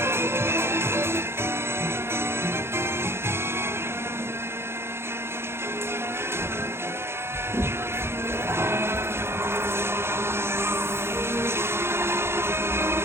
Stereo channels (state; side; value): late; left; 0.12 ms